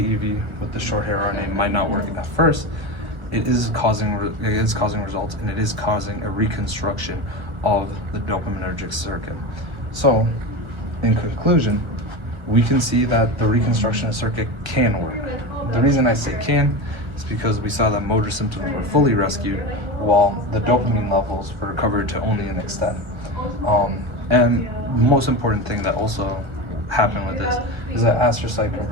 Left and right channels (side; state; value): left; late; 1.4 ms